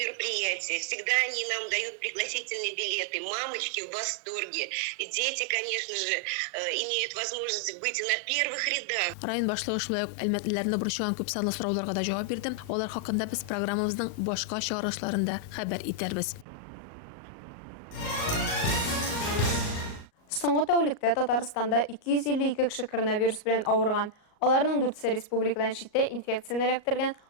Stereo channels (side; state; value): right; late; 38 ms